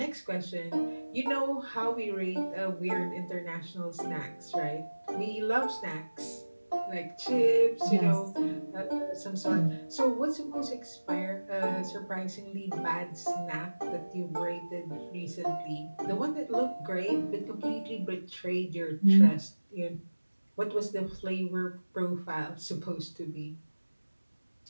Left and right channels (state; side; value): inverted; both; correlation -1.00